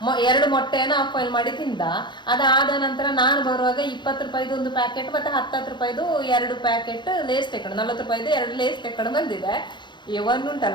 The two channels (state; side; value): late; right; 0.22 ms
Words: 2 ಮೊಟ್ಟೆಯನ್ನು ಆಫ್ ಆಯಿಲ್ ಮಾಡಿ ತಿಂದ. ಅದಾದ ನಂತರ ನಾನು ಬರುವಾಗ 20 ರೂಪಾಯಿದು 1 ಪ್ಯಾಕೆಟ್ ಮತ್ತೆ 10 ರೂಪಾಯಿದು 2 ಪ್ಯಾಕೆಟ್ ಲೇಸ್ ತೆಕೊಂಡು, 40 ರೂಪಾಯಿದು 2 ಲೇಸ್ ತೆಕೊಂಡು ಬಂದಿದೆ.